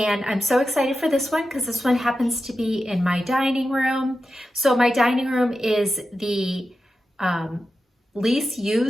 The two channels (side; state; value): both; normal; correlation 0.91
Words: I'm so excited for this one because this one happens to be in my dining room. So my dining room is the least